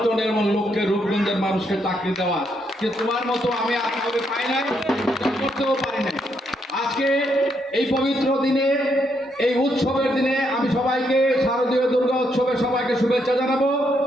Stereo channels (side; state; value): both; normal; correlation 0.77